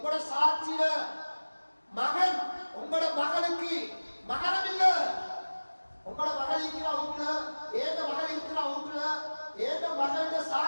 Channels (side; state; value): both; inverted; correlation -1.00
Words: சாட்சியில மகன் உங்களோட மகளுக்கு மகரம் இல்ல. உங்களோட மகள் இருக்கிற வீட்டுல, ஏந்த மகள் இருக்கிற வீட்டுல, ஏந்த மகளோட